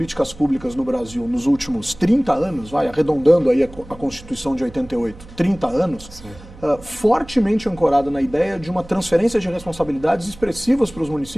públicas no Brasil nos últimos 30 anos, arredondando aí a Constituição de 88, 30 anos, fortemente ancorada na ideia de uma transferência de responsabilidades expressivas para os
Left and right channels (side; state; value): right; noise; hum, 19 dB below the sound